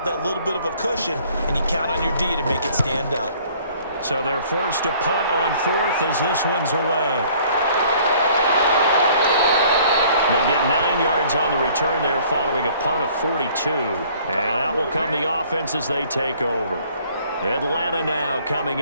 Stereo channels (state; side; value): inverted; both; correlation -0.57